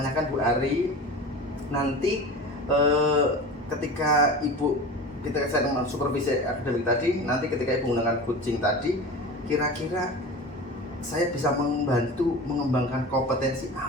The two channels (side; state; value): both; normal; correlation 0.33